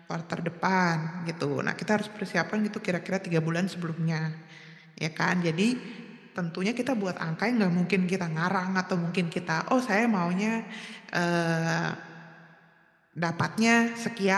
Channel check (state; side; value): identical; both; correlation 1.00